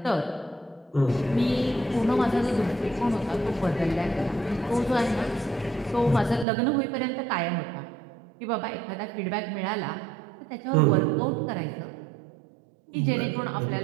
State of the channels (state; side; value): drops out; left; at 6.5 s